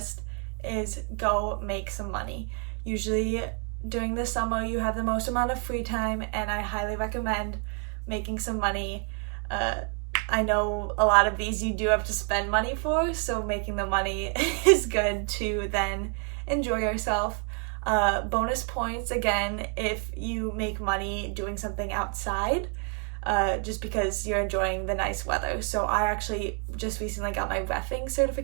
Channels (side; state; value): left; quieter; 38.3 dB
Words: is go make some money. Usually during the summer you have the most amount of free time, and I highly recommend making some money. I know a lot of these you do have to spend money for, so making the money is good to then enjoy yourself. Bonus points again if you make money doing something outside, just because you're enjoying the nice weather. So I actually just recently got my reffing